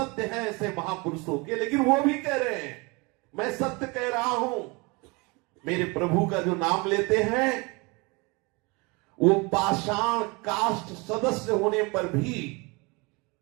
है ऐसे महापुरुषों के, लेकिन वो भी कह रहे हैं मैं सत्य कह रहा हूं। मेरे प्रभु का जो नाम लेते हैं, वो पाषाण काष्ठ सदस्य होने पर भी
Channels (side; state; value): left; quieter; 27.5 dB